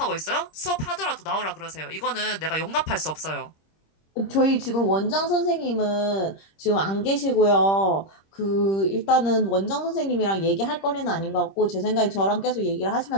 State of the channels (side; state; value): right; late; 26 ms